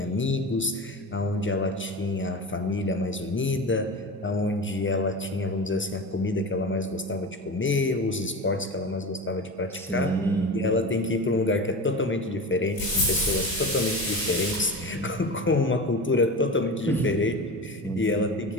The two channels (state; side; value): normal; both; correlation 0.28